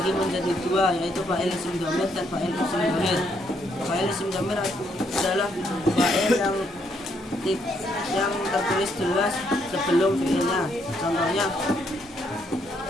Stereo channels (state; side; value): normal; both; correlation 0.73